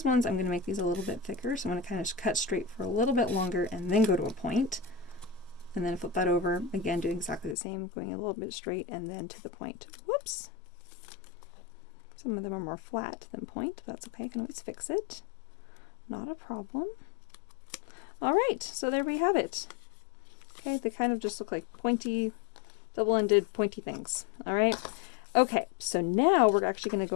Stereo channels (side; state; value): right; drops out; at 7.6 s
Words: ones, I'm going to make these a little bit thicker. So I'm going to kind of cut straight for a little bit longer and then go to a point. And then flip that over. Again, doing exactly the same, going a little bit straight and then to the point. Whoops. Some of them are more flat than point. That's okay. I can always fix it. Not a problem. All right. So there we have it. Okay. They kind of just look like pointy, double-ended, pointy things. All right. Okay, so now we're actually going to